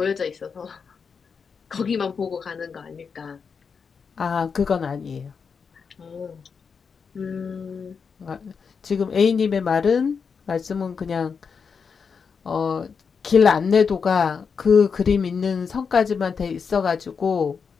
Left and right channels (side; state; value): right; quieter; 5.9 dB